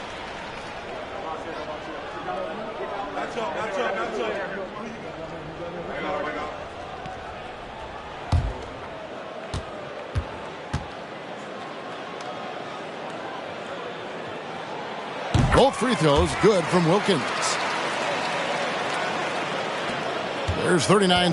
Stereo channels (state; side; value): identical; both; correlation 1.00